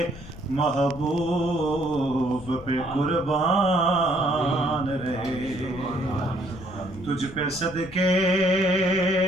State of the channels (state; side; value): noise; left; rumble, 16 dB below the sound